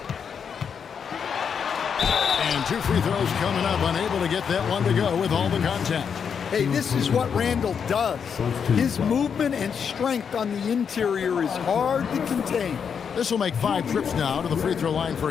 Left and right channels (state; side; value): quieter; right; 6.9 dB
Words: And 2 free throws coming up, unable to get that one to go with all the contact. Hey, this is what Randall does. His movement and strength on the interior is hard to contain. This will make 5 trips now to the free throw line for